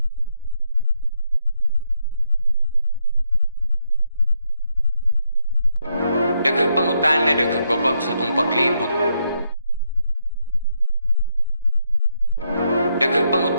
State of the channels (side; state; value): both; inverted; correlation -0.78